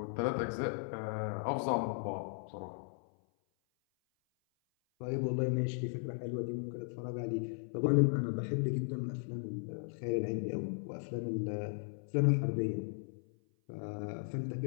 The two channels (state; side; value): silent; right; 53 dB below the other